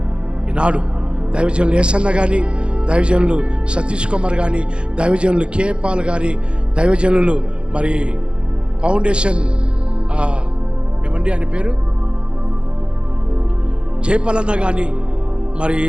ఈనాడు దైవజనులు ఏసన్న కానీ, దైవజనులు సతీష్ కుమార్ కానీ, దైవజనులు కేపాల్ కానీ, దైవజనులు మరి ఫౌండేషన్ ఏమండి ఆయన పేరు జయపాలన్న కానీ, మరి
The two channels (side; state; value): left; late; 0.055 ms